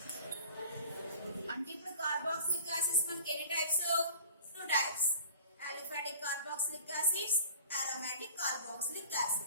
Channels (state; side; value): inverted; both; correlation -0.45